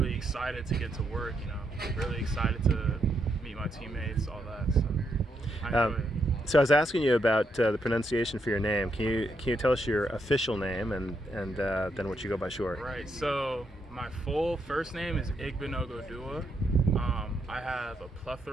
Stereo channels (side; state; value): both; normal; correlation 0.79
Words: excited to get to work. Really excited to meet my teammates, all that. So I enjoy it. So I was asking you about the pronunciation for your name. Can you tell us your official name and then what you go by short? Right. So my full first name is Odua. I have a